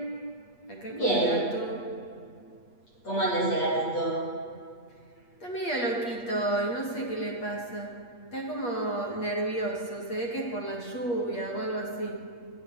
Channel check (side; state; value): right; late; 8.4 ms